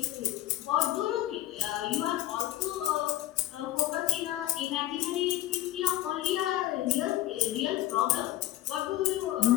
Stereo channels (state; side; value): quieter; right; 15.3 dB